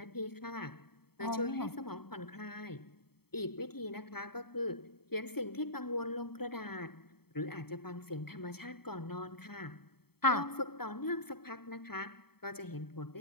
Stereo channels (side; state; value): right; late; 0.95 ms